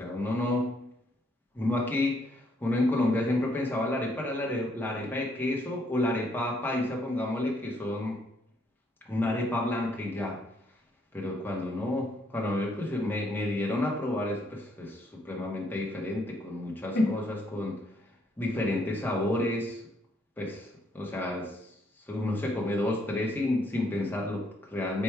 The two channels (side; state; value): both; normal; correlation 0.71